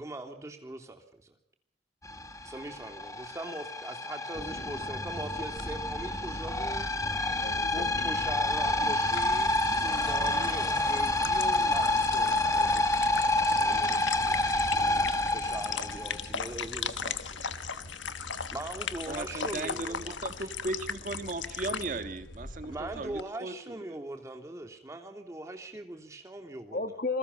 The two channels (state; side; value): normal; both; correlation 0.45